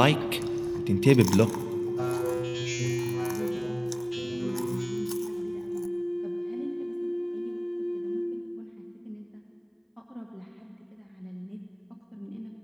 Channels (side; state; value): both; identical; correlation 1.00